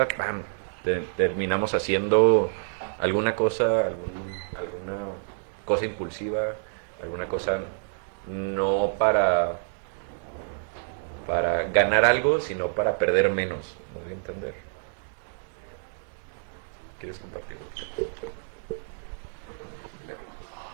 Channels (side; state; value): left; silent; digital silence